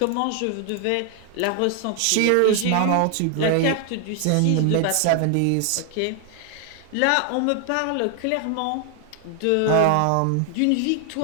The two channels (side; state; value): both; different; correlation 0.01